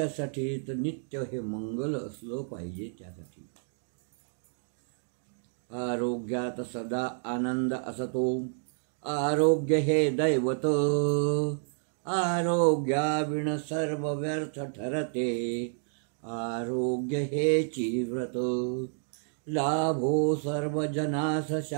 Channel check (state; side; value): silent; left; digital silence